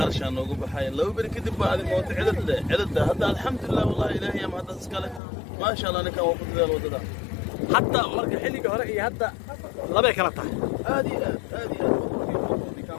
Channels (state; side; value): drops out; right; at 5.2 s